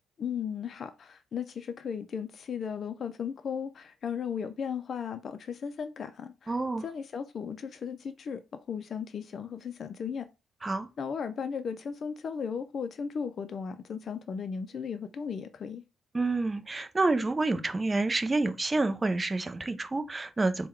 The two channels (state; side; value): normal; both; correlation 0.85